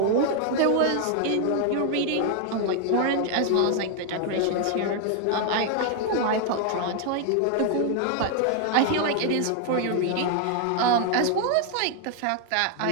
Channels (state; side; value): different; both; correlation 0.00